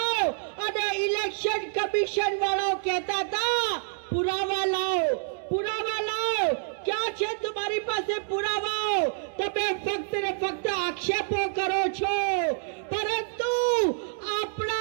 અને ઇલેક્શન કમિશન વાળાઓ કહેતા હતા પુરાવા લાવો, પુરાવા લાવો। ક્યાં છે તમારી પાસે પુરાવાઓ? તમે ફક્ત ને ફક્ત આક્ષેપો કરો છો, પરંતુ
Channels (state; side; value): silent; left; digital silence